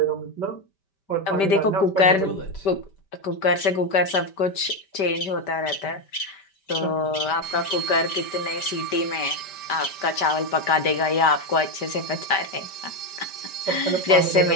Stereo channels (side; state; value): right; late; 5.1 ms